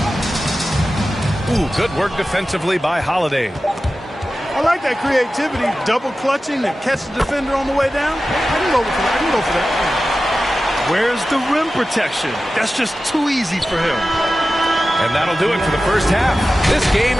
Ooh, good work defensively by Holiday. I like that creativity, double clutching to catch the defender on the way down. I can go for that. I can go for that. Where's the rim protection? That's just too easy for him. And that'll do it for the first half. This game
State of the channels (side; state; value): both; normal; correlation 0.94